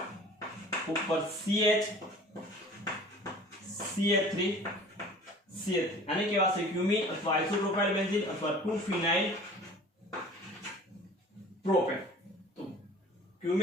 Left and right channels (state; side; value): normal; both; correlation 0.46